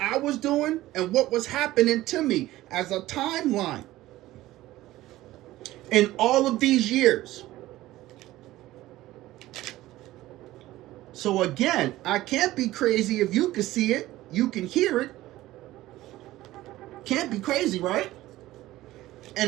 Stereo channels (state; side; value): quieter; left; 16.2 dB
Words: was doing and what was happening to me as a timeline in all of these years. So again, I can't be crazy if you can see it, you can hear it. Can't be crazy, right?